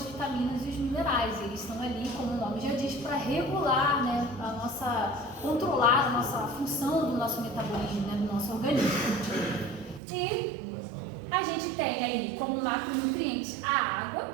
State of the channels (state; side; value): drops out; left; at 10.0 s